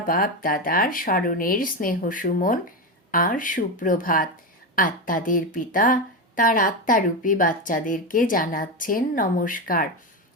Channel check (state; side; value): normal; both; correlation 0.14